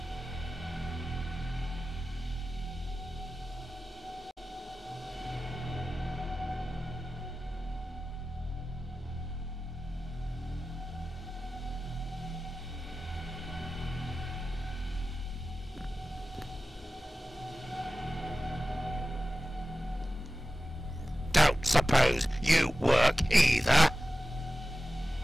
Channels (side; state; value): both; normal; correlation 0.95